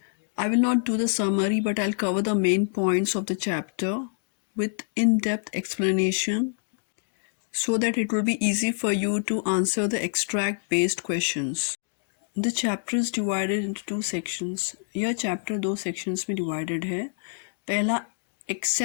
I will not do the summary, but I'll cover the main points of the chapter with in-depth explanation so that it will be easy for you to answer the extract-based questions. The chapter is divided into two sections. यह chapter दो sections में divided है. पहला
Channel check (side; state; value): right; silent; digital silence